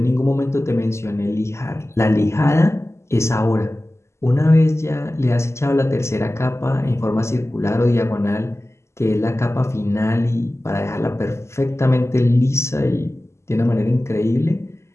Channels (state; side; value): late; right; 0.13 ms